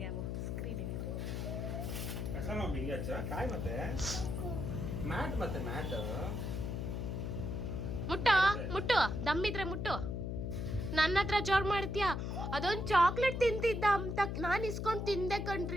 ಅವು ಸ್ಕ್ರೀನ್ ಹೇಳಿರಿ. ಮುಟ್ಟು ದಮ್ಮಿದ್ರೆ ಮುಟ್ಟು. ನನ್ನ ಹತ್ರ ಜೋರ್ ಮಾಡ್ತೀಯ. ಅದೊಂದು ಚಾಕ್ಲೇಟ್ ತಿಂತಿದ್ದ ಅಂತ ನಾನು ಇಸ್ಕೊಂಡ್ ತಿಂದೆ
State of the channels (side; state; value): left; noise; hum, 3 dB below the sound